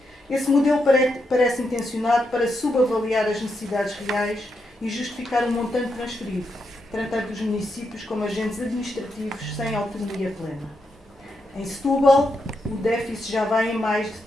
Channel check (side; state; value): both; normal; correlation 0.83